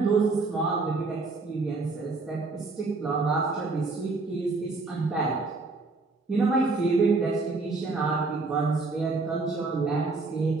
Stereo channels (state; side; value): quieter; left; 3.7 dB